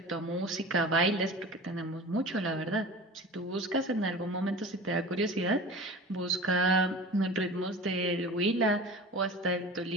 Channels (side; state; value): both; normal; correlation 0.37